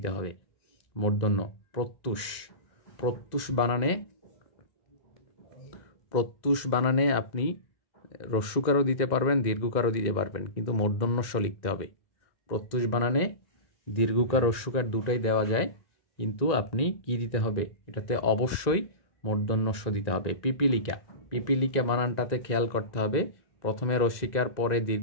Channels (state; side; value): late; right; 2.0 ms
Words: হবে, মূর্ধন্য। প্রত্যুষ, প্রত্যুষ বানানে, প্রত্যুষ বানানে আপনি হ্রস্বকারও দিতে পারবেন, দীর্ঘকারও দিতে পারবেন, কিন্তু মূর্ধন্যস্ব লিখতে হবে। প্রত্যুষ বানানে দীর্ঘকার হ্রস্বকার দুটোই দেওয়া যায়, কিন্তু আপনি কি দিতে হবে, এটাতে অবশ্যই মূর্ধন্যস্ব দিতে হবে। পিপিলিকা, পিপিলিকা বানানটাতে খেয়াল করতে হবে, প্রথমে রস্বীকার, পরে